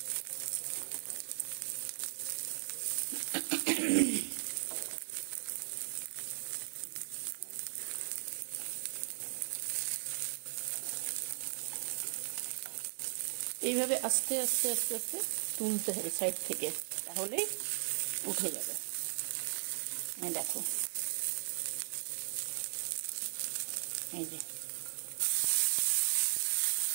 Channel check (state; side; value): silent; left; digital silence